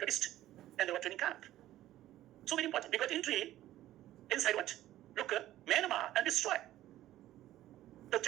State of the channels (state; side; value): quieter; left; 14.2 dB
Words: and they were training camp. So very important. We got entry inside what? Look, Myanmar and destroyed the